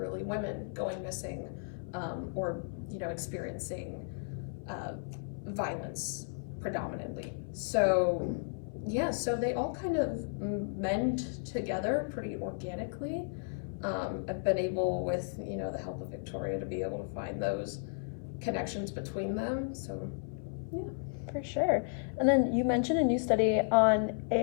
women, going missing, or experiencing violence predominantly. So they all kind of mend together pretty organically. I've been able, with the help of Victoria, to be able to find those connections between them. So yeah. For sure. And then you mentioned a new study on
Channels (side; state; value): right; silent; 55 dB below the other